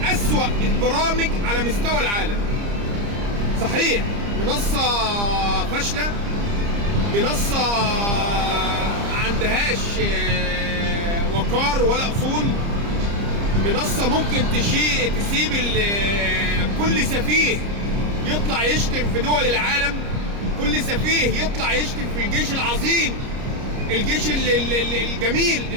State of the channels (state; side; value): late; left; 30 ms